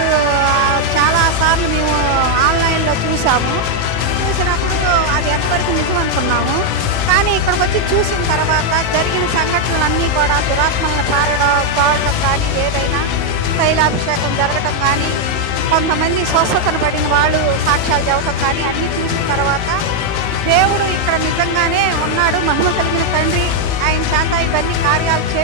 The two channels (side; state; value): left; late; 19 ms